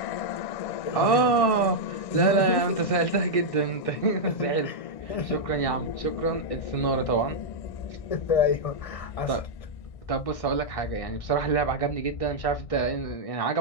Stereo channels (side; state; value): right; late; 1.6 ms